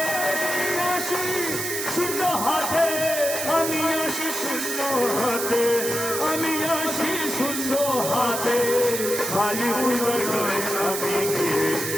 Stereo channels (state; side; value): noise; right; hiss, 4 dB below the sound